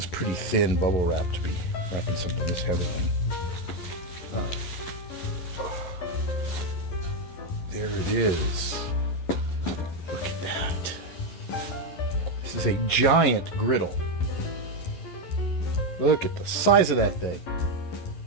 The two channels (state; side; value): late; right; 11 ms